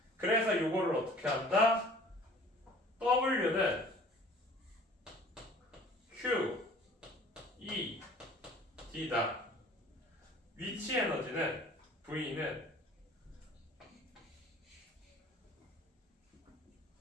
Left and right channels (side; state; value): both; normal; correlation 0.49